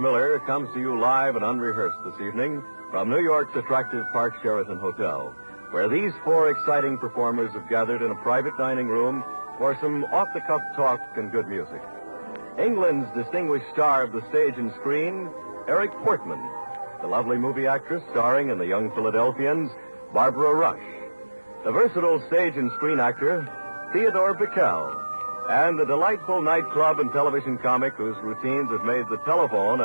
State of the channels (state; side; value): inverted; both; correlation -1.00